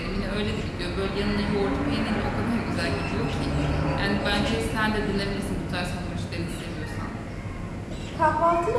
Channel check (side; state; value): both; identical; correlation 1.00